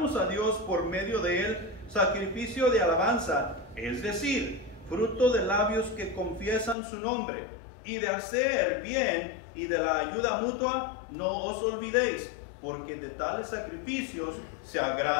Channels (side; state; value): right; drops out; at 6.8 s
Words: a Dios por medio de él sacrificio de alabanza, es decir, fruto de labios que confiesan su nombre, y de hacer bien y de la ayuda mutua no os olvidéis, porque de tales sacrificios se